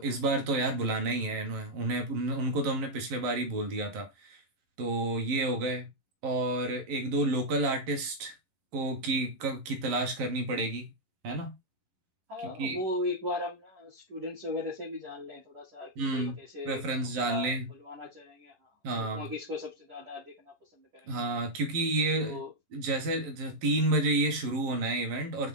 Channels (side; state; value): left; late; 11 ms